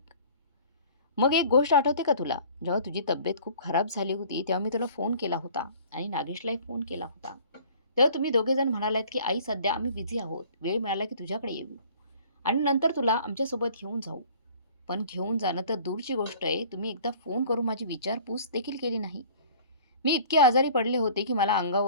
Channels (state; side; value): inverted; both; correlation -0.50